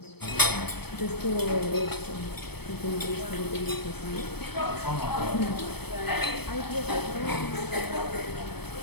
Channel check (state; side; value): late; right; 0.97 ms